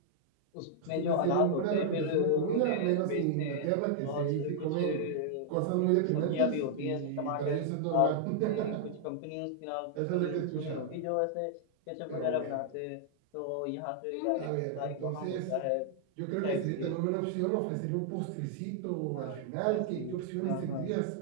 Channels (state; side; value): different; both; correlation -0.01